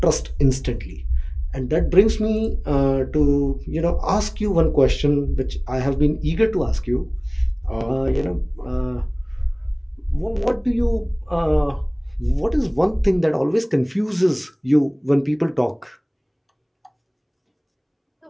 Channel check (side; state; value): both; identical; correlation 1.00